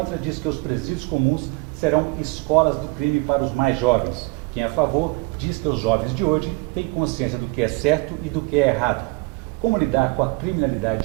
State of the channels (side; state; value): left; quieter; 25.9 dB